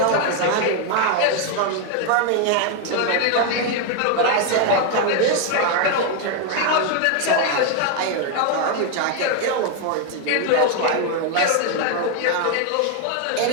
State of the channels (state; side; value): different; both; correlation 0.01